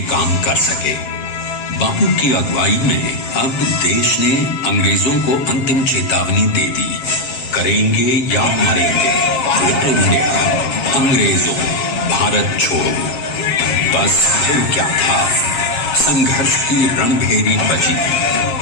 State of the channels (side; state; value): right; late; 7.2 ms